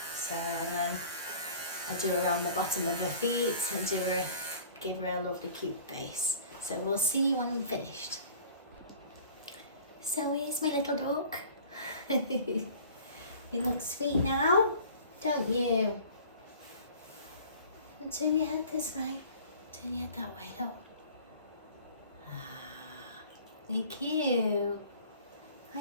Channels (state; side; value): inverted; both; correlation -0.47